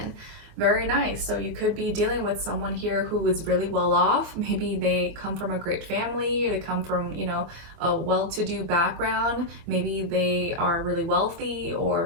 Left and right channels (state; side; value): late; left; 24 ms